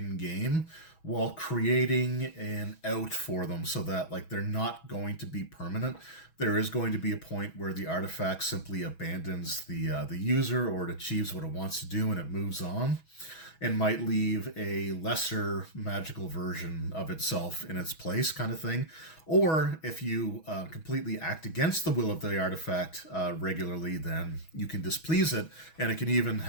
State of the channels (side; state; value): right; late; 6.2 ms